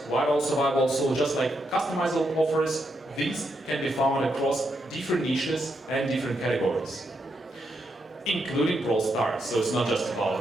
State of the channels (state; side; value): normal; both; correlation 0.81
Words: Whiteout Survival. So just like customizable offers, these can be found across different niches and different categories, including Brawl Stars. So it's not just